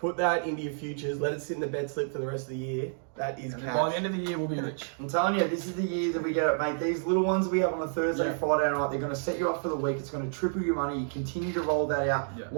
that into your futures. Let it sit in the bet slip for the rest of the year. That is By the cash. end of the year, we'll be rich. I'm telling you, this is the year that we get it, mate. These little ones we have on a Thursday, Yeah. Friday night, they're going to set you up for the week. It's going to triple your money. You continue to roll that out. Yeah.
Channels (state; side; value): silent; left; digital silence